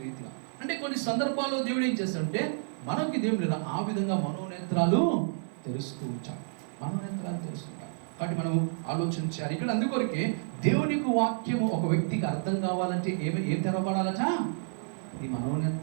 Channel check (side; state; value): left; silent; 58 dB below the other